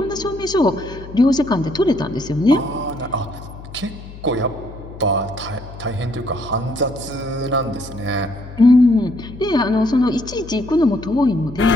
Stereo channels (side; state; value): left; noise; hum, 15 dB below the sound